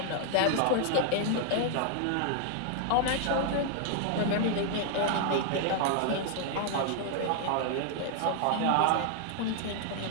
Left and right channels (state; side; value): different; both; correlation 0.00